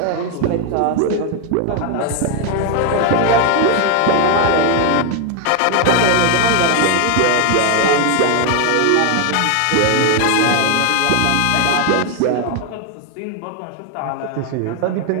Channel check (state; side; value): different; both; correlation 0.01